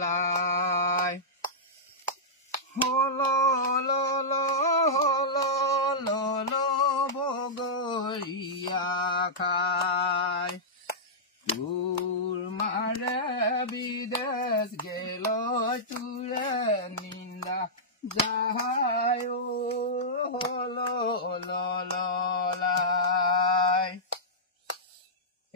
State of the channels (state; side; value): normal; both; correlation -0.13